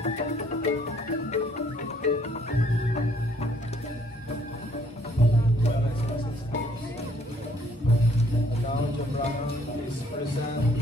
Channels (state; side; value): normal; both; correlation 0.64